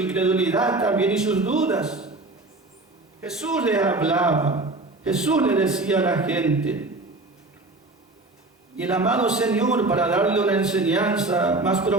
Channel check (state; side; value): quieter; left; 3.1 dB